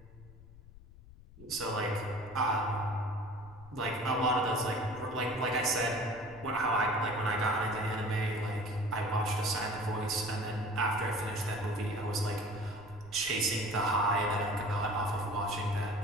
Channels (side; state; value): left; noise; rumble, 20 dB below the sound